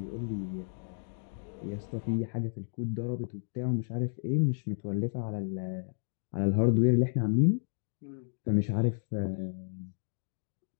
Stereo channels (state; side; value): silent; right; digital silence